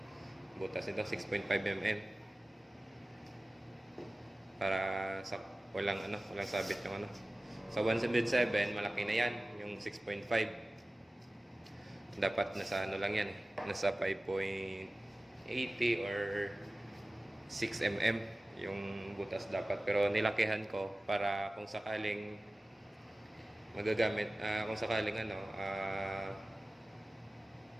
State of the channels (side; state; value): both; normal; correlation 0.97